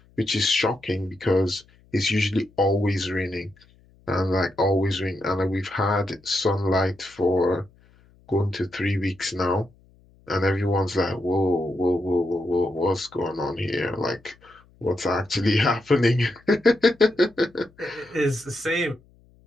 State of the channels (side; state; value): left; noise; hum, 30 dB below the sound